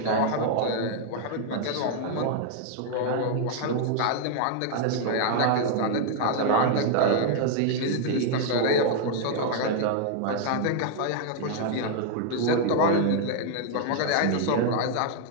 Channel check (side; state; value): both; different; correlation 0.00